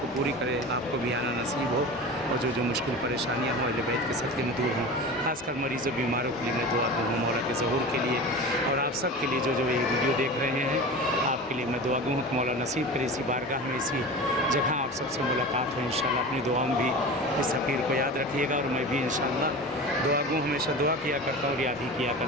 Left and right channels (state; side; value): normal; both; correlation 0.32